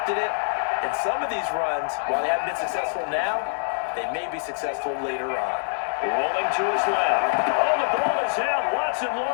it, and some of these runs, while they haven't been successful now, they may be successful later on. Rolling to his left. Oh, the ball is out. Watson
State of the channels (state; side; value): silent; right; digital silence